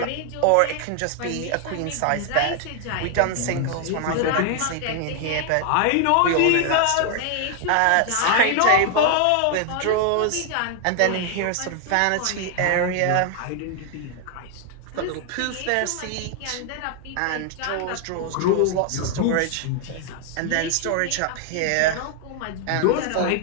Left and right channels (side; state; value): both; different; correlation 0.00